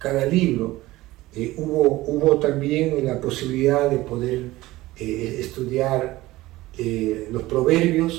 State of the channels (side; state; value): left; quieter; 18.0 dB